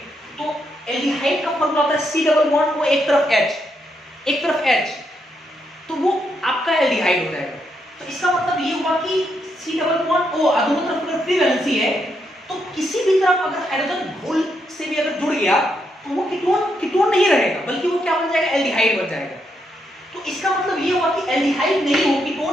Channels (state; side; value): normal; both; correlation 0.79